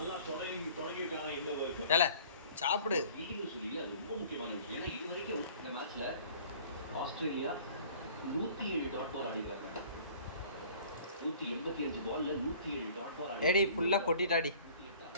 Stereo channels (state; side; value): inverted; both; correlation -0.50